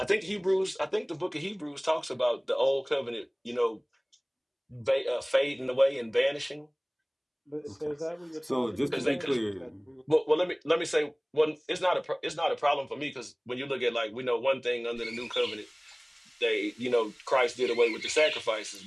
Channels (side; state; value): both; identical; correlation 1.00